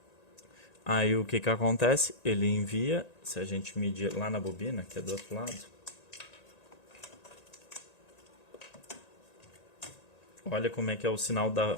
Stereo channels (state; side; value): late; right; 1.9 ms